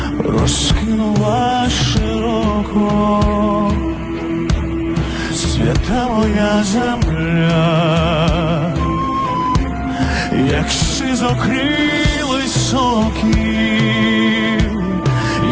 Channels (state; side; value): identical; both; correlation 1.00